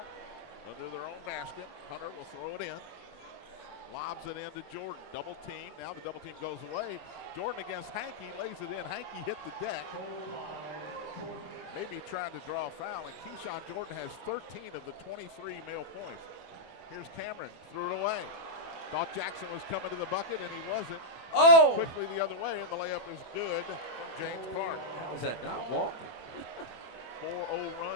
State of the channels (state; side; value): late; right; 24 ms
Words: under their own basket. Hunter will throw it in. Lobs it in to Jordan. Double team. Now the double team goes away. Jordan against Hankey. Lays it in. Hankey hit the deck. Maybe trying to draw a foul. And Keyshawn Jordan has 13 of the 23 male points. Here's Cameron. Threw it away. Thought Jackson was coming to the bucket, and he wasn't. Oh! Quickly the other way, and the layup is good from James Clark. How is that not walking? 4-0